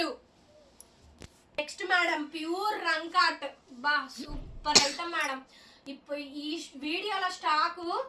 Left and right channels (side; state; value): both; identical; correlation 1.00